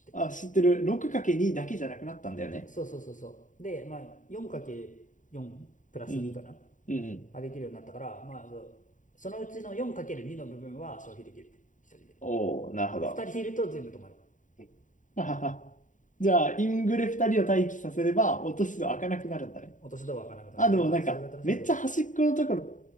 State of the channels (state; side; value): late; right; 0.37 ms